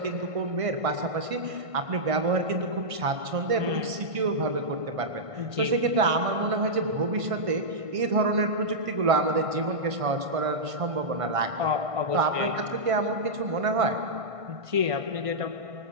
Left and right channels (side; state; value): left; late; 1.5 ms